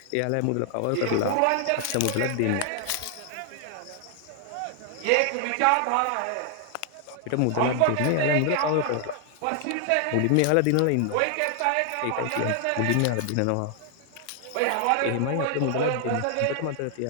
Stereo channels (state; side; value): different; both; correlation 0.00